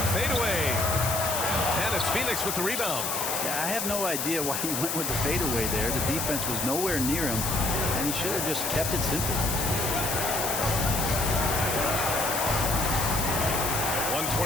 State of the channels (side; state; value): left; noise; hiss, 2 dB below the sound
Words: Fadeaway. And it's Phoenix with the rebound. Yeah, I have no idea why he went with the fadeaway there. The defense was nowhere near him, and he should have just kept it simple.